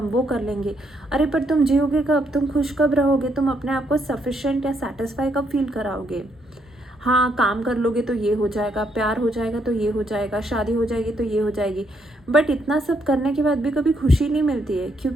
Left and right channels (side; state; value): both; normal; correlation 0.74